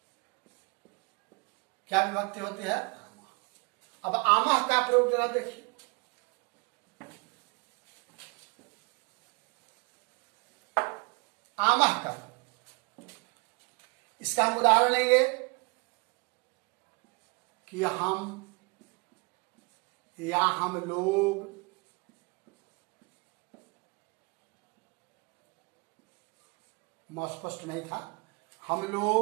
क्या विभक्ति होती है? आमः। अब आमः का प्रयोग जरा देखिए। आमः का, इसका हम उदाहरण लेंगे कि हम या हम लोग, स्पष्ट नहीं था, हम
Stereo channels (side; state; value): left; quieter; 31.4 dB